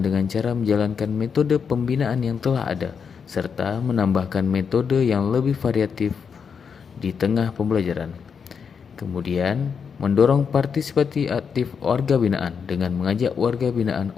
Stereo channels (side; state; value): right; quieter; 6.4 dB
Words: dengan cara menjalankan metode pembinaan yang telah ada, serta menambahkan metode yang lebih variatif di tengah pembelajaran. Kemudian, mendorong partisipasi aktif warga binaan dengan mengajak warga binaan